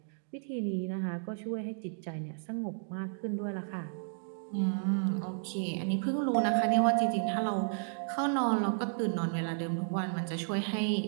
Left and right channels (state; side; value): silent; left; digital silence